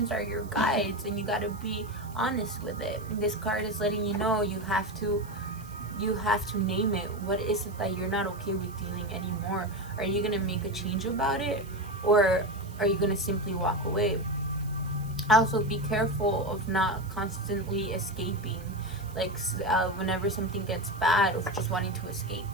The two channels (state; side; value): noise; right; hiss, 22 dB below the sound